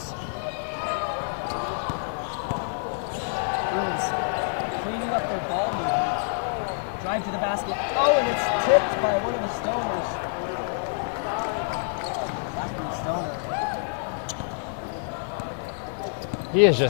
Bruins cleaning up their ball movement. Drive to the basket. Oh, and it's tipped by one of the Stoners. Zachary Stoner. He is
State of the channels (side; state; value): right; silent; digital silence